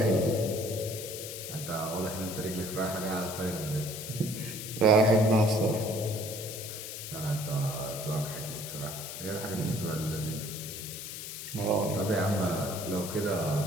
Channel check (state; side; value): noise; left; hiss, 8 dB below the sound